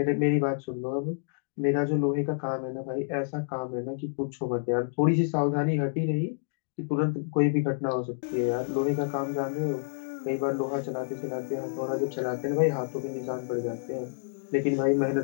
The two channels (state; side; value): silent; right; digital silence